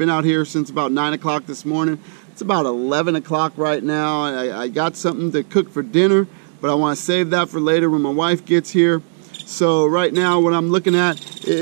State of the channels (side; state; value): left; silent; digital silence